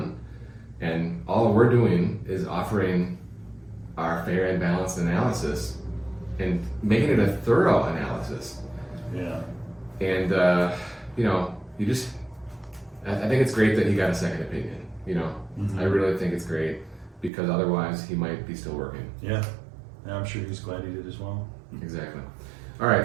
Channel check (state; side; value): drops out; left; at 17.3 s